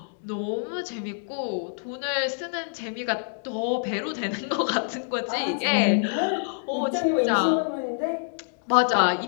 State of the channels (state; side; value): silent; right; digital silence